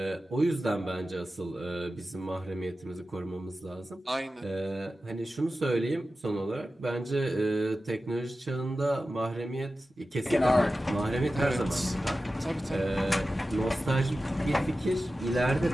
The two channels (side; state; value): both; normal; correlation 0.94